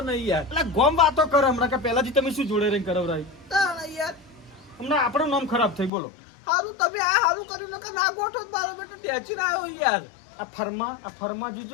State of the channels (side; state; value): right; drops out; at 5.9 s